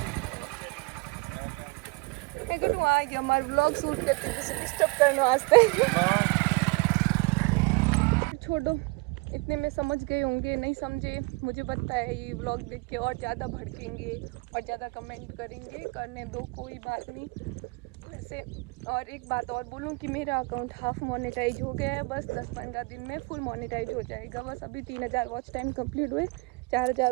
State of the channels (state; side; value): quieter; left; 28.3 dB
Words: देखो, आ गया हमारे व्लॉग शूट करते, डिस्टर्ब करने वास्ते। छोड़ो, इतने में समझ गए होंगे, नहीं समझे मुझे पता है। ये व्लॉग देख के और ज़्यादा भड़केंगे और ज़्यादा कमेंट करेंगे, करने दो, कोई बात नहीं। वैसे और एक बात और बोलूँ कि मेरा अकाउंट हाफ मोनेटाइज हो गया है, बस 10-15 दिन में फुल मोनेटाइज हो जाएगा। बस अभी 3000 वॉच टाइम कंप्लीट हुए, 4000